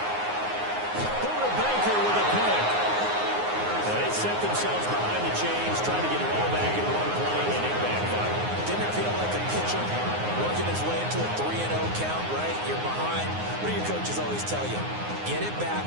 Buda Baker with a pick. They set themselves behind the chains, trying to get it all back in one play, and it backfired. Didn't it feel like a pitcher working his way into a 3-0 count, right? You're behind. What do your coaches always tell you? Get it back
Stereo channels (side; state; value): left; late; 9.6 ms